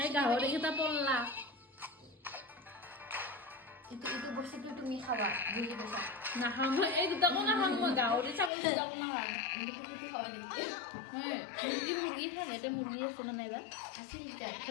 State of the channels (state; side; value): drops out; right; at 8.5 s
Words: गाहरी kita pola itu বস্তুটো তুমি খাবা বুজি পাইছা না হাম এই দুটা কোনা হাম গাহরি ছাগল দুটা কোনা হাম মুৰ্গীটো খাবা নেকি হ্যাঁ মুরগি খাবে এটা মুরগি আছে না নাইবা আছিল তার